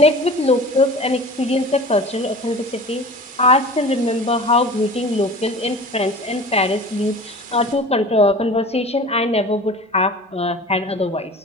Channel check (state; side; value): normal; both; correlation 0.39